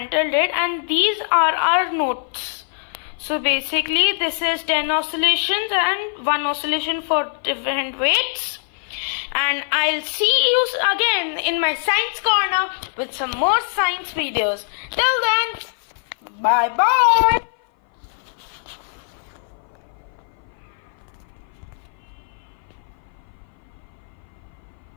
it, and these are our notes. So basically this is 10 oscillations and 1 oscillation for different weights. And I'll see you again in my science corner with some more science videos. Till then, bye bye.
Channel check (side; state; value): right; silent; 57 dB below the other